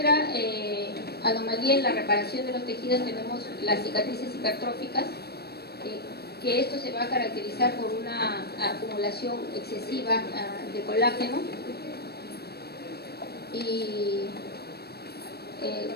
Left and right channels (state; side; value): late; right; 0.47 ms